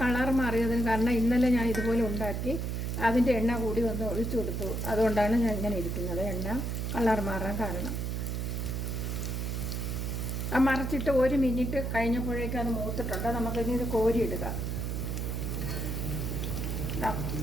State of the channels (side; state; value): right; noise; hum, 2 dB below the sound